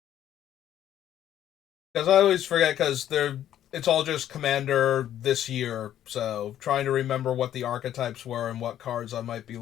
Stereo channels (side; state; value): right; quieter; 11.3 dB